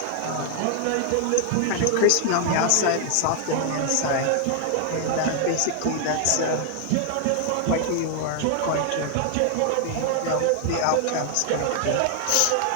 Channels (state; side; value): different; both; correlation 0.00